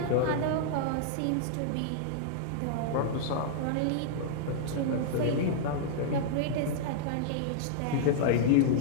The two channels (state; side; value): different; both; correlation -0.01